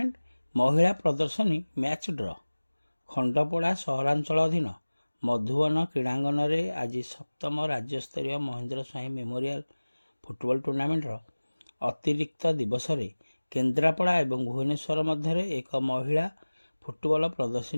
ମହିଳା ପ୍ରଦର୍ଶନୀ ମ୍ୟାଚ୍ ଡ୍ର। ଖଣ୍ଡପଡ଼ା ସହରାଞ୍ଚଳ ଅଧୀନ ମଧୁବନ କ୍ରୀଡ଼ାଙ୍ଗନରେ ଆଜି ସପ୍ତମ ରାଜ୍ୟସ୍ତରୀୟ ମହେନ୍ଦ୍ର ସ୍ୱାଇଁ ମେମୋରିଆଲ ଫୁଟବଲ ଟୁର୍ଣ୍ଣାମେଣ୍ଟର ଅତିରିକ୍ତ ଦିବସରେ କେନ୍ଦ୍ରାପଡ଼ା ଏବଂ ଭୁବନେଶ୍ୱର ମଧ୍ୟରେ ଏକ ମହିଳା ଫୁଟବଲ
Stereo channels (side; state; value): both; inverted; correlation -1.00